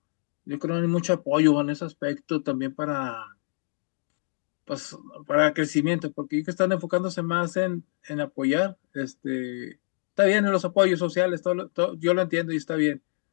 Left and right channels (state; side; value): silent; right; digital silence